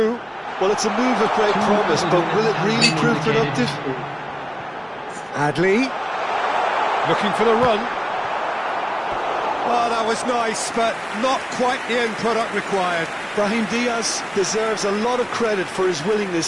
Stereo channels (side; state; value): both; identical; correlation 1.00